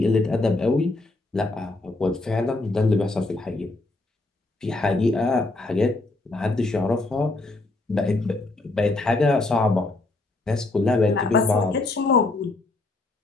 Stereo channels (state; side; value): quieter; right; 3.0 dB